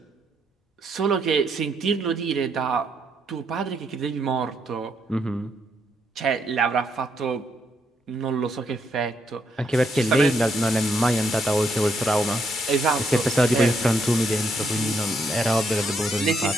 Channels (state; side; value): normal; both; correlation 0.75